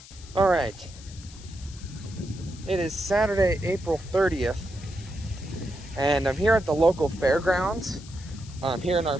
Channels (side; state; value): left; noise; hiss, 19 dB below the sound